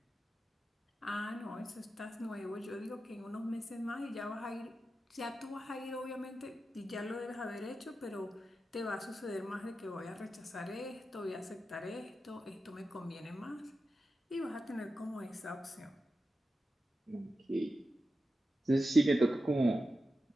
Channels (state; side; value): normal; both; correlation 0.91